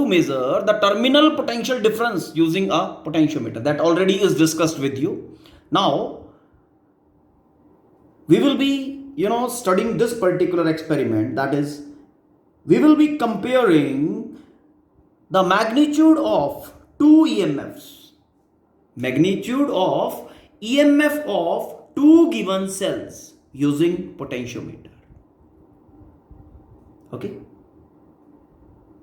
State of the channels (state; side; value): identical; both; correlation 1.00